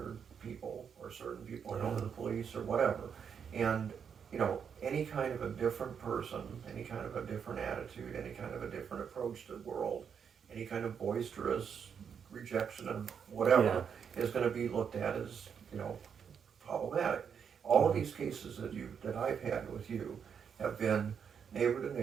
people, or certain people are known to the police, or whatever. And, you know, any kind of a different person, any kind of a different attitude, any kind of a different approach to the world, any kind of boisterous rejection of whatever is going to be looked at as, you know, problematic. All of these cases that I've had with you have been neighbor to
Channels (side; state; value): left; quieter; 7.2 dB